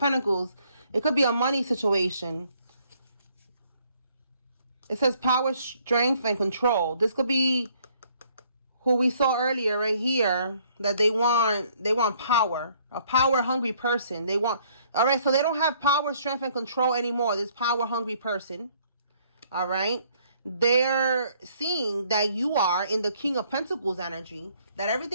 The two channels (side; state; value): both; inverted; correlation -0.64